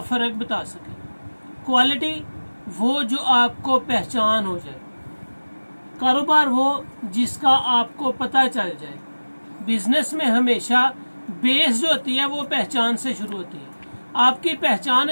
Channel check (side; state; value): both; inverted; correlation -1.00